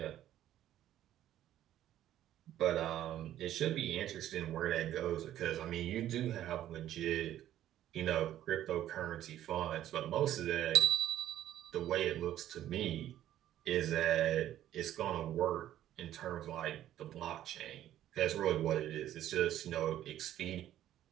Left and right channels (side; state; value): left; quieter; 12.3 dB